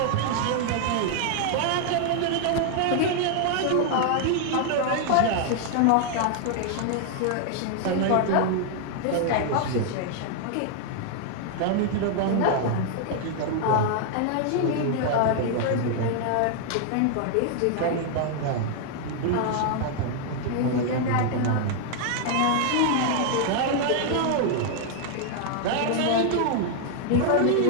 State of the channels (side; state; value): both; different; correlation 0.00